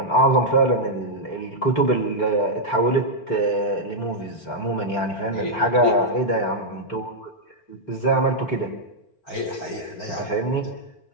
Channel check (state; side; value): late; right; 4.4 ms